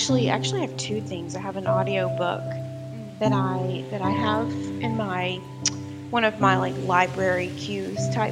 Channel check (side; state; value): both; identical; correlation 1.00